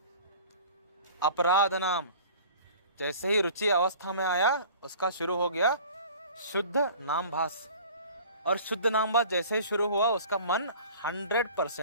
अपराध नाम। जैसे ही रुचि अवस्था में आया उसका शुरू हो गया शुद्ध नामभास, और शुद्ध नामभास जैसे ही शुरू हुआ उसका मन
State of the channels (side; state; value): both; inverted; correlation -0.45